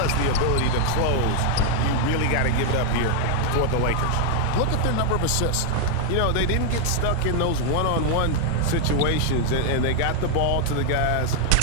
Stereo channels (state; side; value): different; both; correlation 0.00